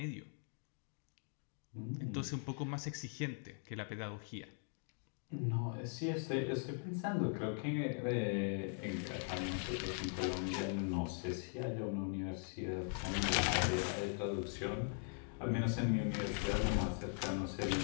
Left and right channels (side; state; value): right; silent; 51 dB below the other